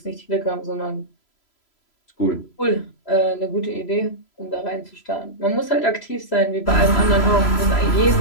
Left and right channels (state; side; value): late; right; 3.0 ms